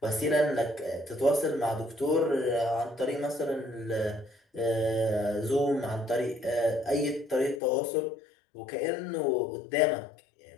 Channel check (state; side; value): drops out; right; at 7.6 s